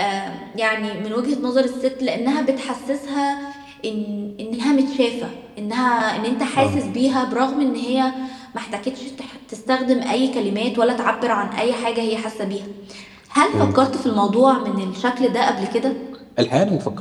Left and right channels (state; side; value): identical; both; correlation 1.00